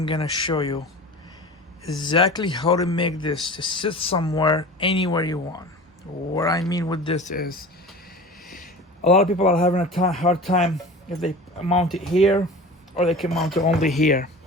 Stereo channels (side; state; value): both; normal; correlation 0.36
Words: gonna show you exactly how to make this to sit somewhere anywhere you want. What I mean with this is a lot of people are having a hard time if they mount it here, or they can mount it only here,